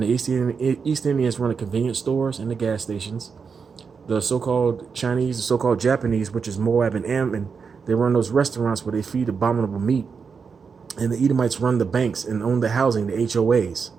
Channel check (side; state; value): left; quieter; 5.7 dB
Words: the East Indians run the convenience stores and the gas stations. The so-called Chinese, the so-called Japanese, which is Moab and Ammon, they run those restaurants where they feed abominable meat. And the Edomites run the banks and own the housing, the HOAs.